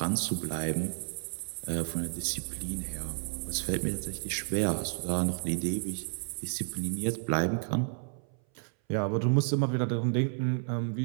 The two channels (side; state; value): left; silent; 57 dB below the other